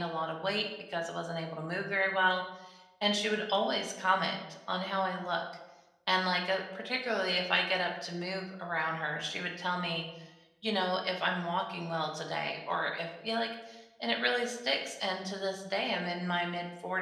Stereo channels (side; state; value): both; identical; correlation 1.00